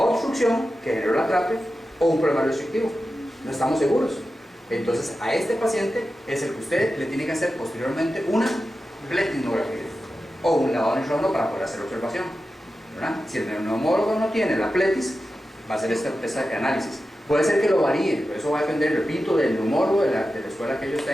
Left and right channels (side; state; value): both; normal; correlation 0.92